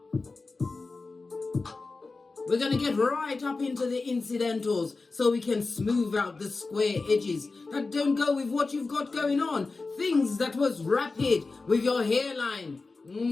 We're going to get right up into the incidentals so we can smooth out the square edges that don't go with what you've got going on. Things that was rapid with your hairline.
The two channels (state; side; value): quieter; right; 3.8 dB